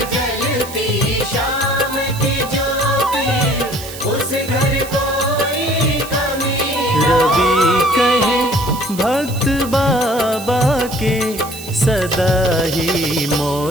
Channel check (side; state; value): right; noise; hiss, 14 dB below the sound